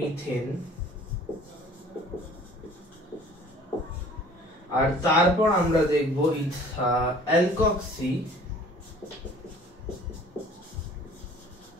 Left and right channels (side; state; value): both; normal; correlation 0.51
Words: আর তারপর আমরা দেখব অ্যালকক্সি